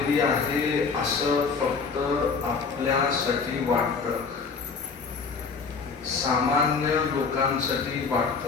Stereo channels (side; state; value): right; quieter; 5.0 dB